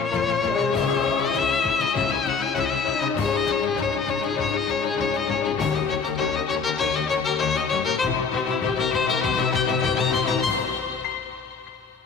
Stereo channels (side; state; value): right; quieter; 5.1 dB